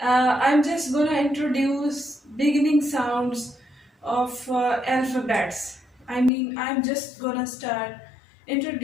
just gonna introduce beginning sounds of alphabets. I'm just gonna start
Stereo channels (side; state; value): right; drops out; at 6.3 s